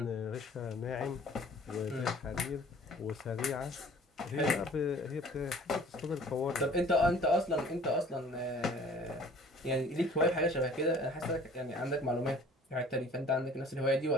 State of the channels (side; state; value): both; normal; correlation 0.51